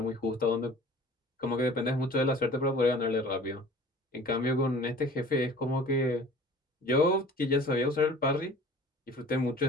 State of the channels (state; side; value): normal; both; correlation 0.46